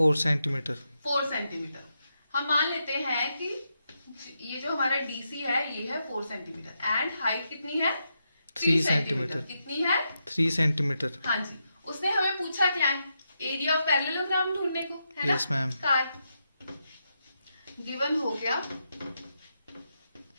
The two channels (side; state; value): both; inverted; correlation -0.84